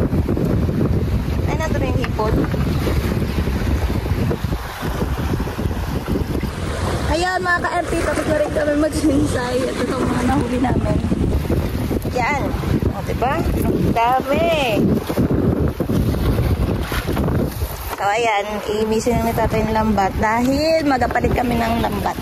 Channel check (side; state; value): both; identical; correlation 1.00